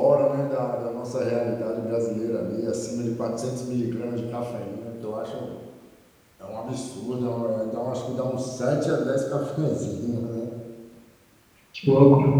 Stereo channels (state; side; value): identical; both; correlation 1.00